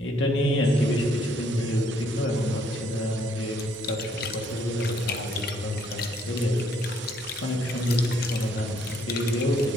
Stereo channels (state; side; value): normal; both; correlation 0.68